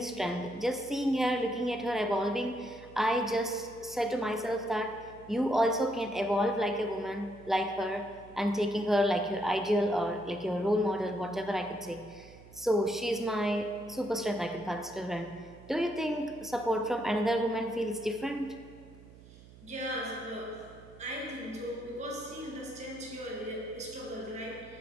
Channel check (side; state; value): right; noise; hum, 20 dB below the sound